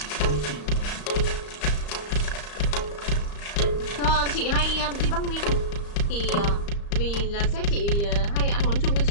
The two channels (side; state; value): right; late; 34 ms